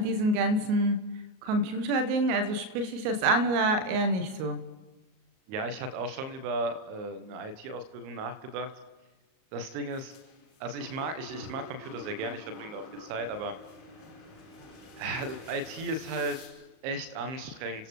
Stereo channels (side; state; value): left; late; 38 ms